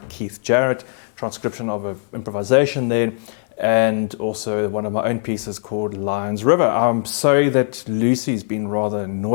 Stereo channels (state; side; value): silent; right; digital silence